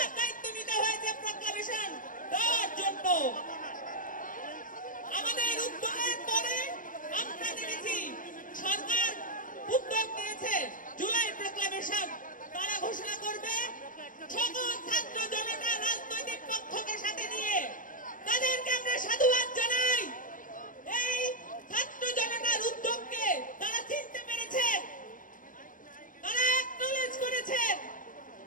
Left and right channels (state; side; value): late; right; 0.39 ms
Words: দায়িত্ব নিতে হয়েছে প্রক্লামেশন দেওয়ার জন্য। আমাদের উদ্যোগের পরে আমরা দেখেছি সরকার উদ্যোগ নিয়েছে জুলাই প্রক্লামেশন তারা ঘোষণা করবে, সকল ছাত্র জনতা রাজনৈতিক পক্ষকে সাথে নিয়ে। তাদেরকে আমরা সাধুবাদ জানাই। এই ছাত্র জনতার উদ্যোগকে তারা চিনতে পেরেছে, তারা অ্যাকনলেজ করেছে।